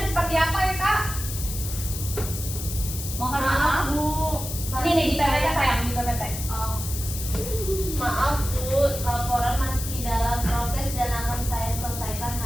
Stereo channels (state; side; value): noise; left; hiss, 7 dB below the sound